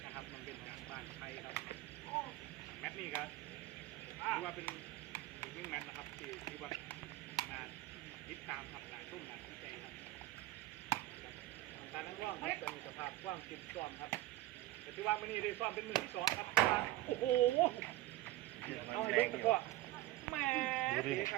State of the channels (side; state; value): left; quieter; 16.5 dB